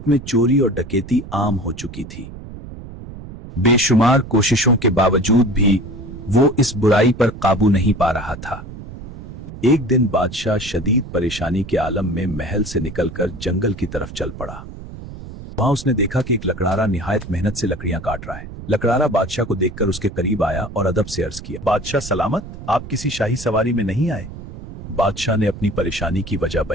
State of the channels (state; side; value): noise; right; rumble, 13 dB below the sound